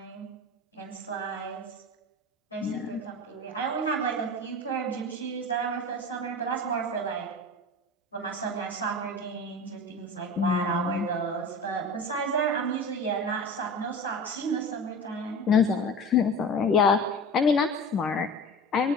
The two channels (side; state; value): both; normal; correlation 0.34